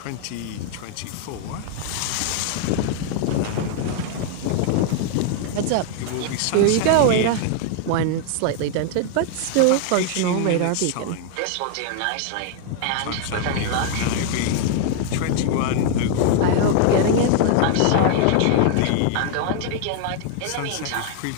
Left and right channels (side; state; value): both; different; correlation 0.00